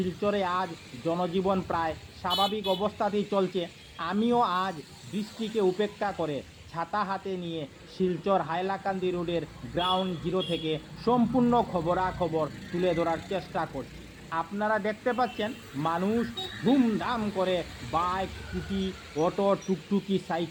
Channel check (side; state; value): both; identical; correlation 1.00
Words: আজ জনজীবন প্রায় স্বাভাবিক অবস্থাতেই চলছে। আমিও আজ বৃষ্টিকে উপেক্ষা করে ছাতা হাতে নিয়ে শিলচর হাইলাকান্দি রোডের গ্রাউন্ড জিরো থেকে সম্পূর্ণ খবরাখবর তুলে ধরার চেষ্টা করছি। আপনারা দেখতে পাচ্ছেন মানুষ ধুমধাম করে বাইক, স্কুটি, অটো, টুকটুকি,